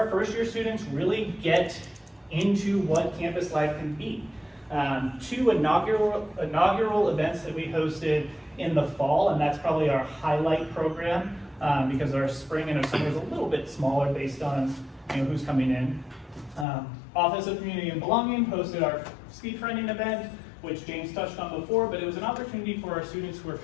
first year students really get into what campus life can be. Two inaugural events that we hosted in the fall, and that's probably our highlight program because our spring and our summer is a little bit smaller based on who's coming in. Office of Community and Belonging hosted our speed finding event, which James touched on before, but it was an opportunity for our students who are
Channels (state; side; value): drops out; right; at 16.7 s